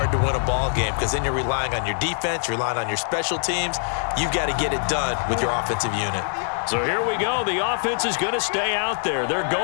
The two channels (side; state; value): right; silent; digital silence